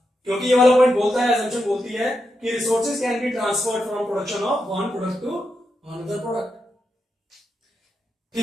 क्योंकि ये वाला पॉइंट बोलता है, assumption बोलती है कि resources can be transferred from production of one product to another product.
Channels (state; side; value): normal; both; correlation 0.86